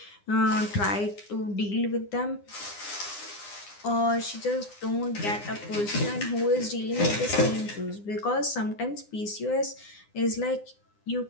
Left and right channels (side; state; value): right; late; 9.8 ms